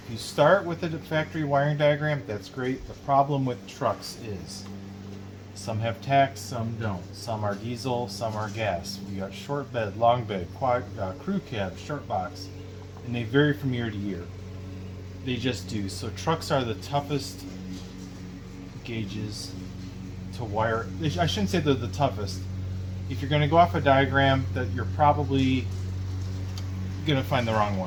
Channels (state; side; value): identical; both; correlation 1.00